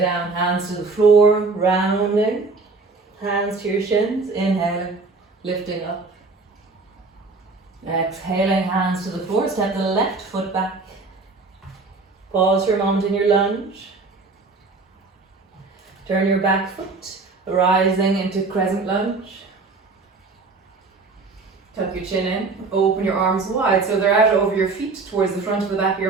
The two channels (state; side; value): quieter; left; 3.9 dB